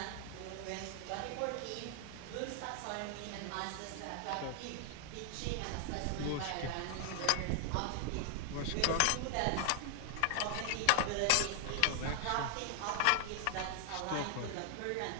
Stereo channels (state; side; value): different; both; correlation 0.00